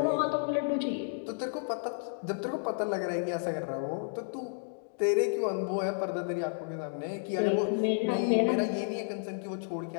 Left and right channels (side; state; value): right; silent; digital silence